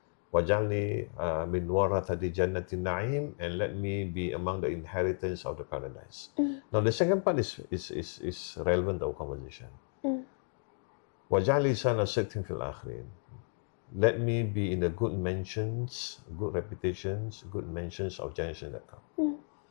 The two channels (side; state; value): right; silent; 56 dB below the other